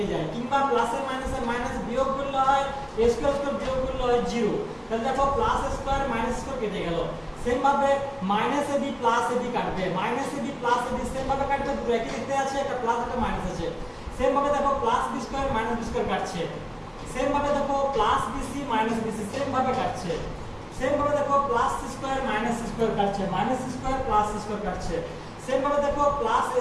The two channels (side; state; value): both; identical; correlation 1.00